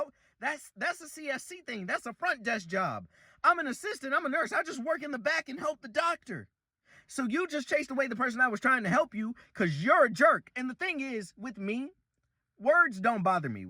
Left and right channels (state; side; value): identical; both; correlation 1.00